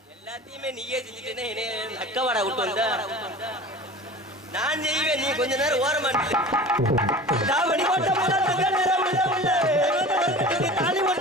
எல்லாத்தையுமே நீயே செஞ்சுட்டேனே. அக்கவாடா விட்டு வந்த நான் செய்வேன். நீ கொஞ்ச நேரம் ஓரமா தாவணி போட்ட உள்ள தங்க நேரம் உள்ள உள்ள தாலி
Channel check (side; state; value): both; normal; correlation 0.38